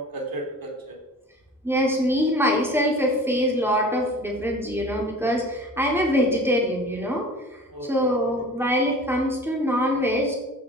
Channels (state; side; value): normal; both; correlation 0.42